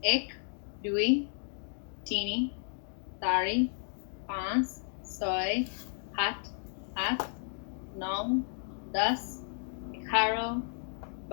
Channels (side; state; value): right; silent; 56 dB below the other